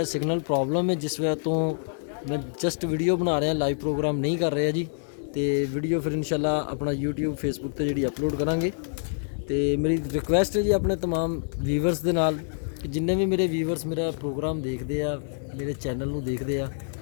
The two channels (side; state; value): right; silent; 60 dB below the other